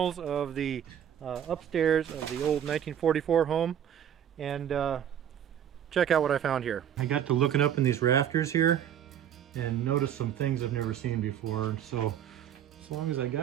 of the upstairs of the old 1944 home, and check out what I found here. I got to looking up in these rafters here and noticed some things I've never seen before. So as long as I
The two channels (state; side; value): quieter; left; 9.7 dB